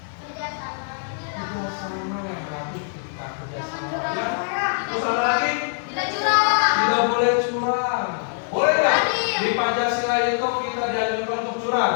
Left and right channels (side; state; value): right; silent; digital silence